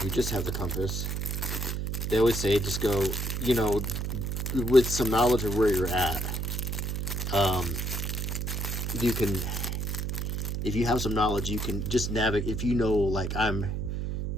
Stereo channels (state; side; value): noise; right; hum, 2 dB below the sound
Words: you just have the compass, they always say just go, you know, with some knowledge of where you're at. You can, if you have some knowledge, you can just navigate. If you know, like I'm